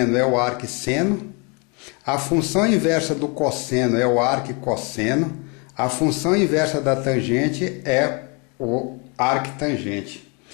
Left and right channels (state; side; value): quieter; right; 31.7 dB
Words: é o arcseno, a função inversa do cosseno é o arquicosseno, a função inversa da tangente é o arctangente.